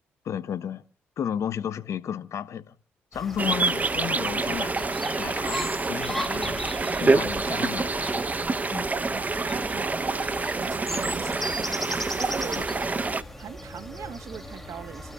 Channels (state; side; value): normal; both; correlation 0.66